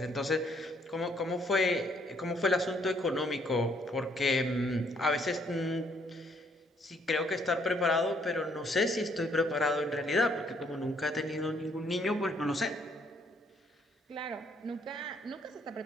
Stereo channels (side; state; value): both; normal; correlation 0.67